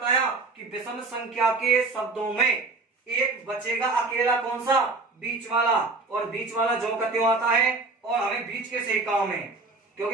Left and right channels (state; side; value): quieter; left; 3.7 dB